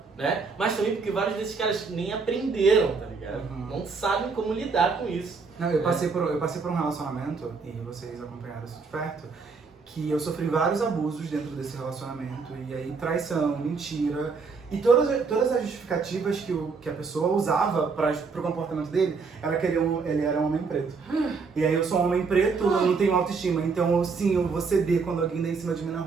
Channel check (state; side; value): quieter; left; 4.8 dB